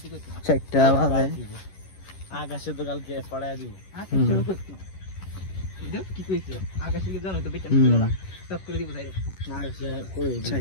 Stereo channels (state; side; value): late; right; 11 ms